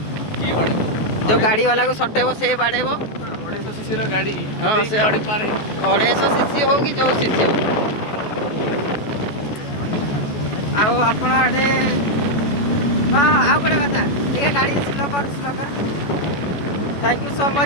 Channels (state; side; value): late; right; 14 ms